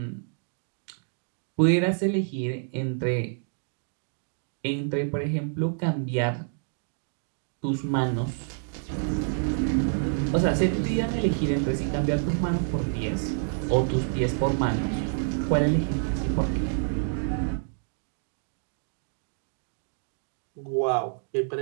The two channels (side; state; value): left; silent; digital silence